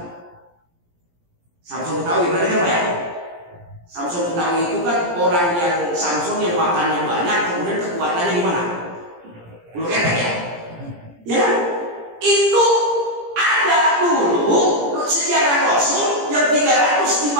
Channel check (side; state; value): left; late; 17 ms